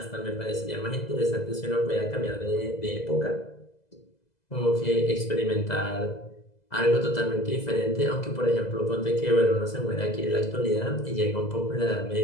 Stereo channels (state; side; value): late; right; 2.0 ms